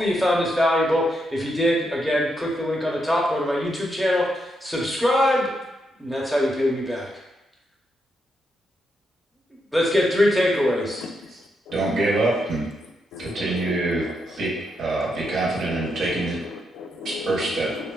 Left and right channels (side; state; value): both; normal; correlation 0.81